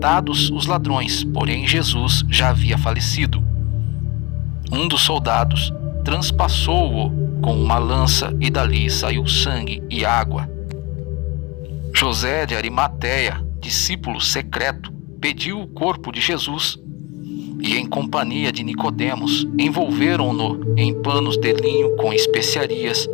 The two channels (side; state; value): right; quieter; 24.4 dB